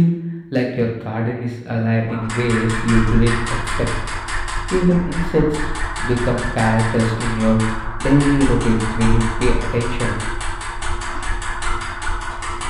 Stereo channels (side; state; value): both; identical; correlation 1.00